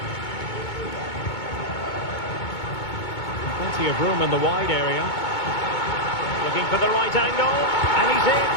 Plenty of room in the wide area. Looking for the right angle. And he's in.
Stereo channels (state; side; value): late; right; 2.2 ms